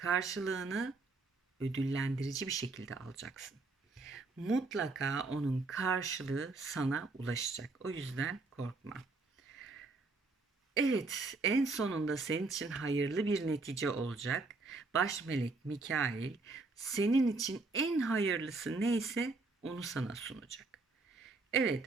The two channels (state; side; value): quieter; left; 3.6 dB